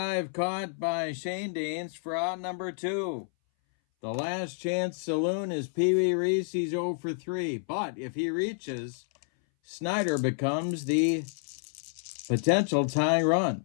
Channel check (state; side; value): silent; right; 58 dB below the other